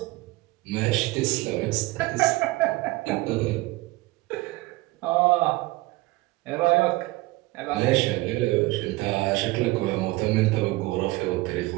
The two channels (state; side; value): quieter; left; 20.6 dB